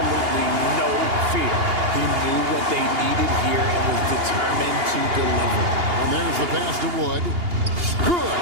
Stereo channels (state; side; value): late; left; 2.8 ms